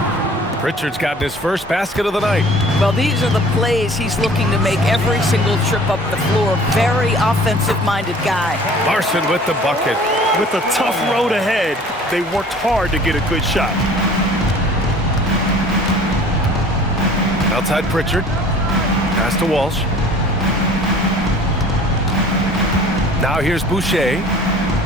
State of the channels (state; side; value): normal; both; correlation 0.49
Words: Pritchard's gotten his first basket of the night. Well, these are the plays he's looking to make every single trip up the floor. Very offensive-minded guy. Larson with the bucket. With a tough road ahead, they worked hard to get a good shot. Outside Pritchard. Pass to Walsh. Now here's Boucher.